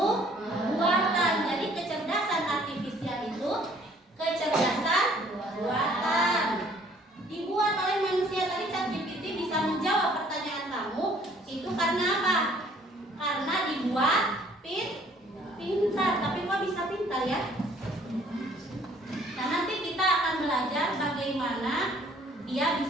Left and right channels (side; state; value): both; normal; correlation 0.58